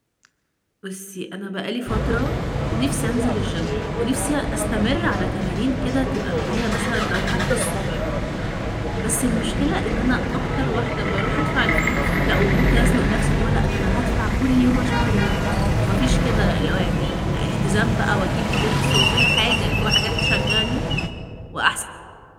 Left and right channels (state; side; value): identical; both; correlation 1.00